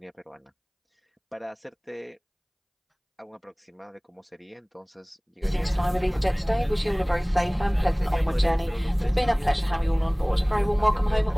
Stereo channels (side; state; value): both; identical; correlation 1.00